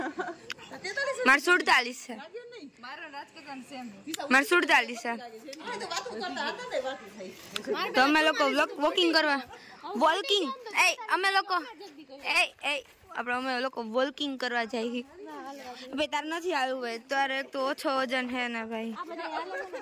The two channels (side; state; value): both; identical; correlation 1.00